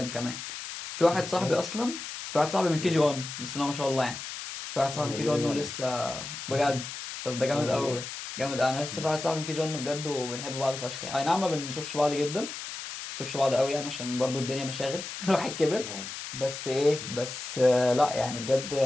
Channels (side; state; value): left; noise; hiss, 8 dB below the sound